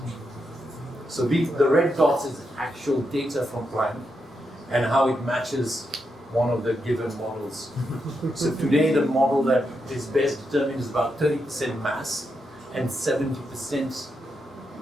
So the red dots is actual data from Planck and how it matches one of the given models. So today the model that is best determined is about 30% mass and 70%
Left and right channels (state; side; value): normal; both; correlation 0.84